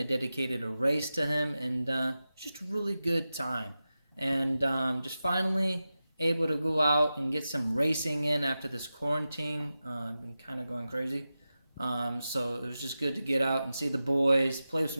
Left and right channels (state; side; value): inverted; both; correlation -0.93